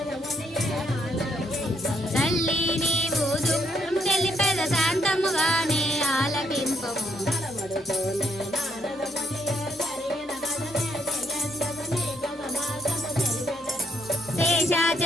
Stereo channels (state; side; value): normal; both; correlation 0.72